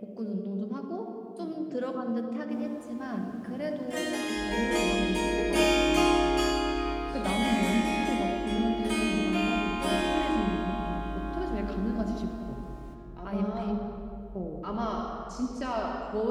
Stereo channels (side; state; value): both; identical; correlation 1.00